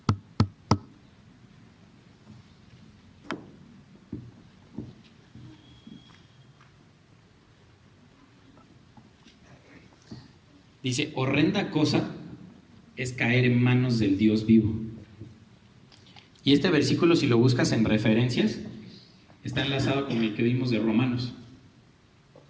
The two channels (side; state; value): both; identical; correlation 1.00